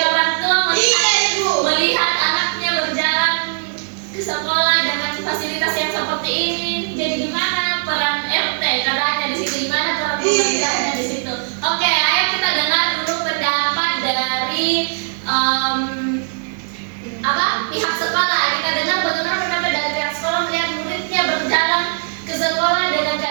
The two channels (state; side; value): silent; left; digital silence